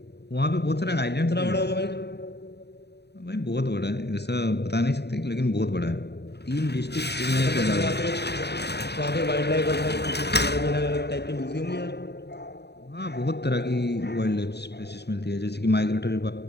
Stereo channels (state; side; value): late; right; 0.48 ms